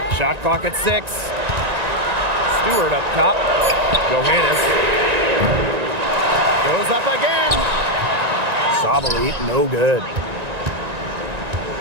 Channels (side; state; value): left; late; 1.9 ms